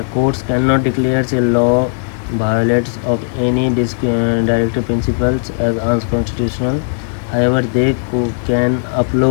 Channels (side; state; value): right; silent; digital silence